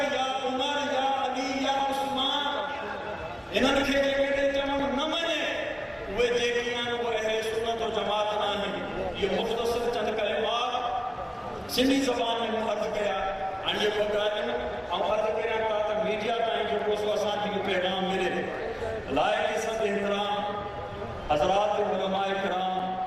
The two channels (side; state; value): both; identical; correlation 1.00